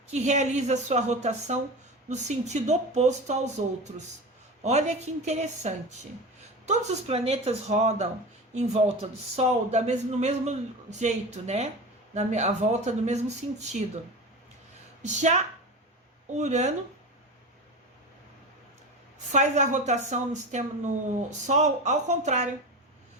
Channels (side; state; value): both; normal; correlation 0.28